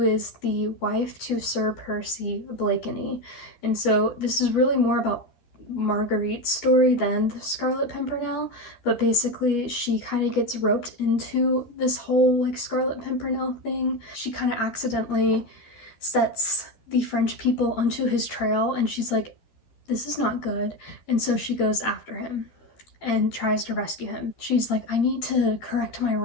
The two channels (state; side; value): late; right; 12 ms